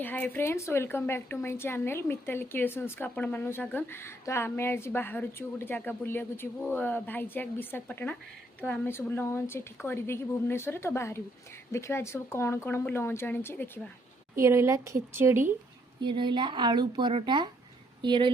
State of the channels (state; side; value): normal; both; correlation 0.70